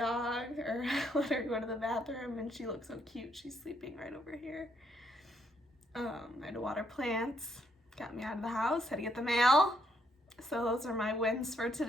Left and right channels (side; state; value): both; normal; correlation 0.73